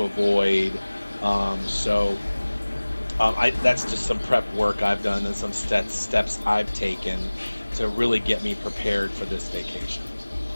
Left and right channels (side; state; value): both; inverted; correlation -1.00